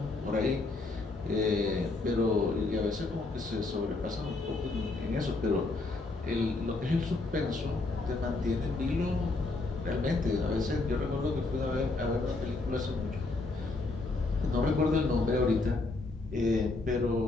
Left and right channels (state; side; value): quieter; right; 3.3 dB